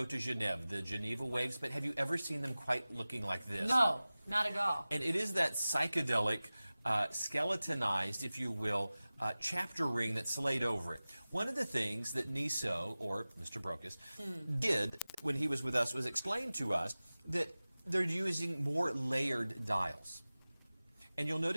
de Genève, the Geneva waves, but have you ever seen them quite looking like this? No, not at all. And it is that psychedelic, skeletonized, if you will, chapter ring that's laid over it. One of the things that Niso, or Mr. Brokus, did when he was with us was explain to us that they're using more layered dials. And you'll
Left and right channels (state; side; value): inverted; both; correlation -0.97